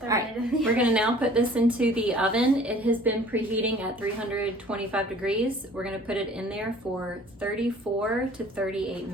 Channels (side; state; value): both; normal; correlation 0.50